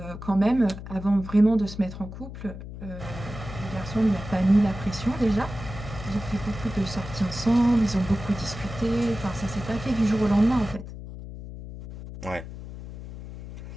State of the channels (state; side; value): noise; left; hum, 11 dB below the sound